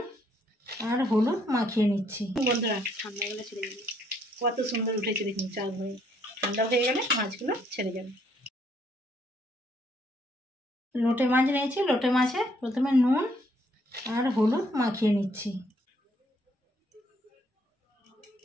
আর হলুদ মাখিয়ে নিচ্ছি। বন্ধুরা ঠান্ডা গেলে ছেড়ে যাবে। কত সুন্দর উঠেছে দেখুন চাল হয়ে। ঠান্ডা হয়ে গেলে মাছগুলো ছেড়ে যাবে। লোটে মাছ নিয়েছি। লোটে মাছে প্রথমে নুন আর হলুদ মাখিয়ে নিচ্ছি।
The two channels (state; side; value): normal; both; correlation 0.69